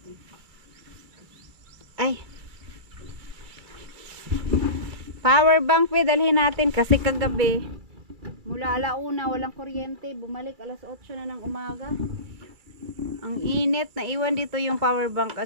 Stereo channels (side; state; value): left; late; 2.3 ms